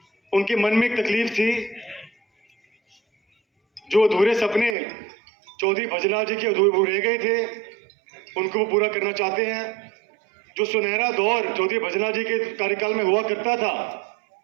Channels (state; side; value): drops out; left; at 4.8 s